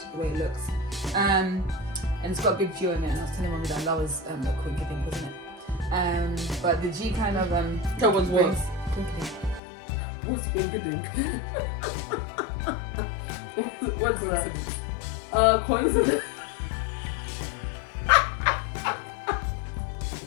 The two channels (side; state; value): right; drops out; at 9.6 s